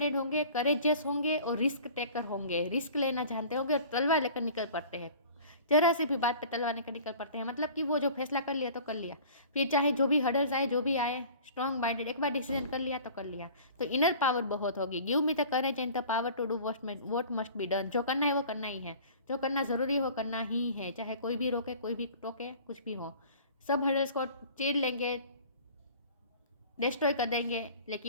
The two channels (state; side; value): inverted; both; correlation -0.44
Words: होंगे, करेजियस होंगे और रिस्क टेकर होंगे, रिस्क लेना जानते होंगे और तलवार लेकर निकल पड़ते हैं। जरा सी भी बात पे तलवार लेकर निकल पड़ते हैं, मतलब कि वो जो फैसला कर लिया तो कर लिया, फिर चाहे जो भी हर्डल्स आए जो भी आए, स्ट्रॉन्ग माइंडेड, एक बार डिसीजन कर लिया तो कर लिया। तो इनर पावर बहुत होगी। Give me the courage and the power to do what must be done. जो करना है वो करना ही है, जो करना ज़रूरी हो करना ही है, चाहे कोई भी रोके कोई भी टोके, कुछ भी हो। सब हर्डल्स को चीर लेंगे, डिस्ट्रॉय कर देंगे,